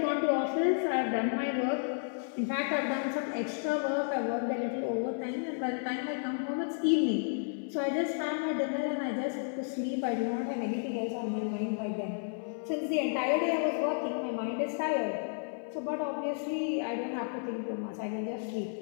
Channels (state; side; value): silent; right; 56 dB below the other